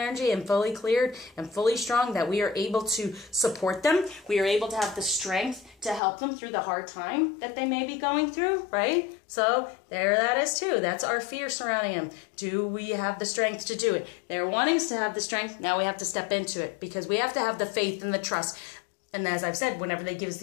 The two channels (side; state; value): right; drops out; at 6.0 s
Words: and fully cleared and fully strong, that we are able to support them. We are able to have the strength to help them through the hard time that they may be going through, right? So there that is too. That's our fear surrounding them. Do we have the strength to do it? They're wanting us to have the strength. Now we have to step into it, because we have to have the faith and the trust. And as I've said, whenever they give us